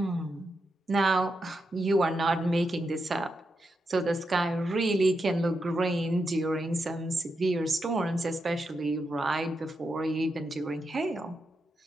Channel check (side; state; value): both; normal; correlation 0.85